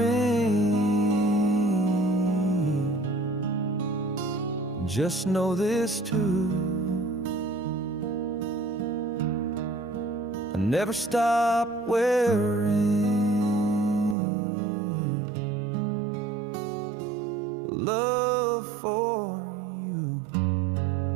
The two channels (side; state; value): left; drops out; at 14.2 s